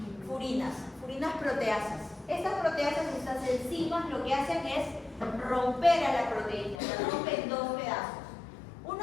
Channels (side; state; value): right; drops out; at 6.8 s